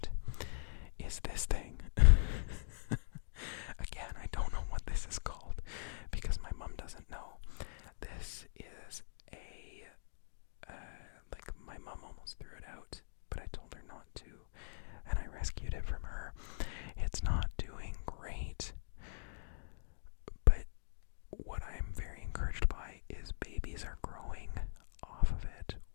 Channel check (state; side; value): silent; right; digital silence